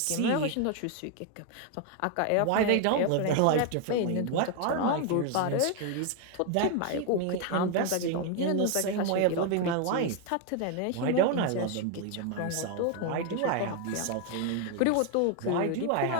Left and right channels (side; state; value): both; different; correlation 0.01